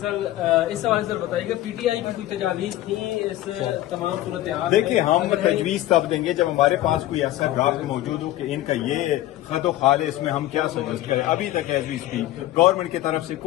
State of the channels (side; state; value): right; quieter; 14.9 dB